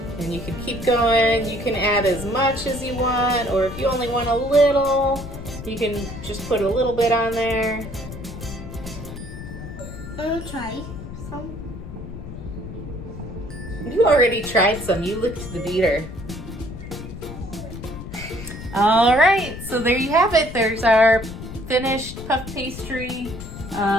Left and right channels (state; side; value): noise; left; rumble, 11 dB below the sound